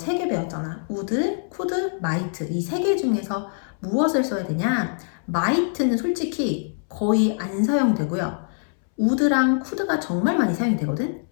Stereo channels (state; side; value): silent; right; 63 dB below the other